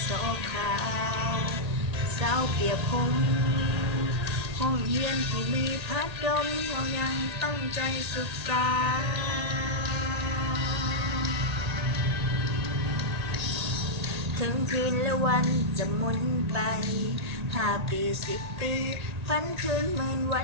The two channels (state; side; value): late; left; 1.9 ms